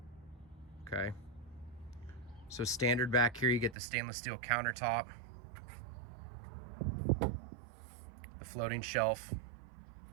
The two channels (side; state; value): left; drops out; at 3.8 s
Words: Okay. So standard back here, you get the stainless steel countertop, the floating shelf.